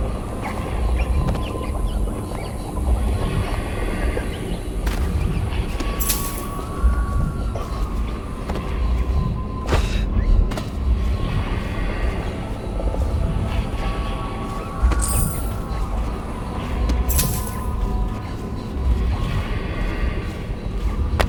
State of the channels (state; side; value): identical; both; correlation 1.00